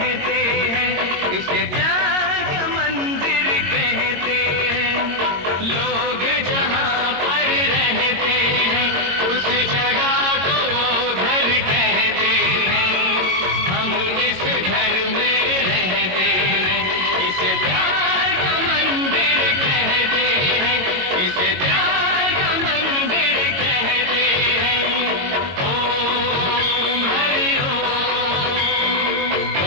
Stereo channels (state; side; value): late; left; 22 ms